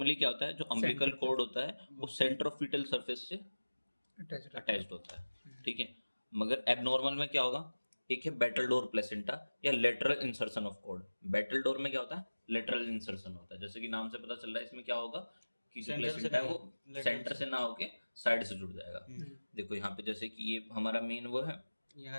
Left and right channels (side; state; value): both; inverted; correlation -1.00